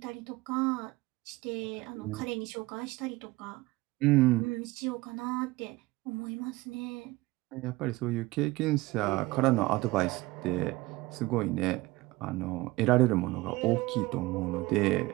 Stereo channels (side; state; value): left; quieter; 20.7 dB